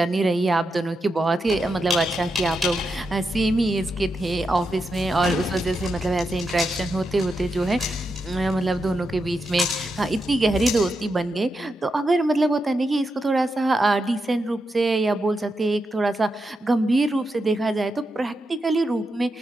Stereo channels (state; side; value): normal; both; correlation 0.86